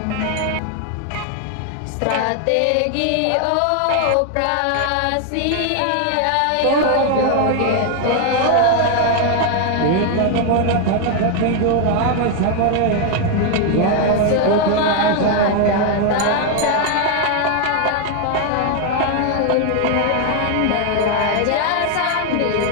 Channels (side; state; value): both; different; correlation 0.00